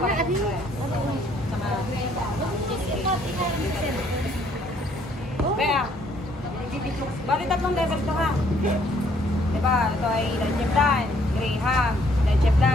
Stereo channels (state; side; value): normal; both; correlation 0.65